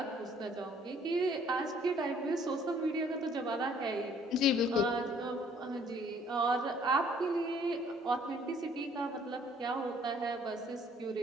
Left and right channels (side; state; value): both; normal; correlation 0.60